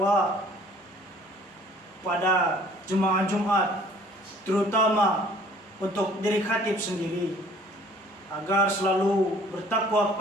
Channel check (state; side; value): normal; both; correlation 0.55